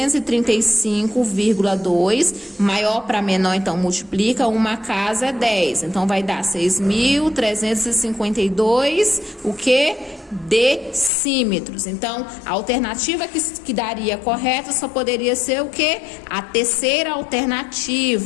maior para menor, então multiplica, uma casa é 10. Então vai dar 6.352, o quê? Decímetros. Então, a alternativa que daria correta só poderia ser o quê? A terceira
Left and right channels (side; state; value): right; drops out; at 11.1 s